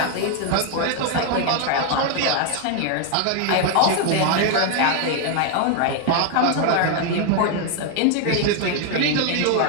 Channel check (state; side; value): different; both; correlation 0.00